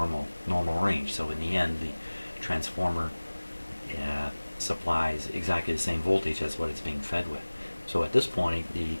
range. So in the end, the transformer supplies exactly the same voltage as what it's being fed with. So at this point, the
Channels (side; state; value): both; inverted; correlation -1.00